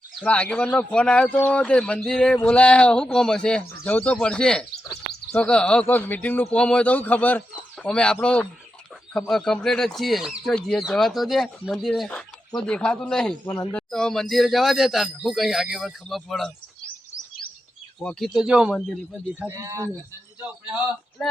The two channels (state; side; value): normal; both; correlation 0.88